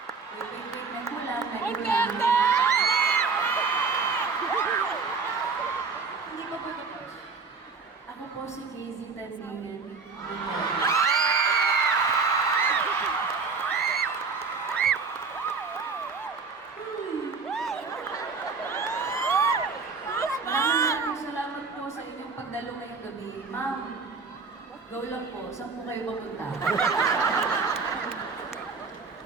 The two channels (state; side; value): quieter; left; 4.9 dB